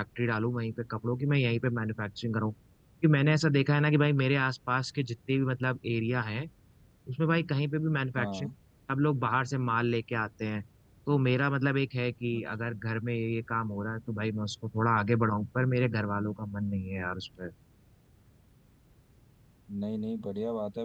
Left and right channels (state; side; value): identical; both; correlation 1.00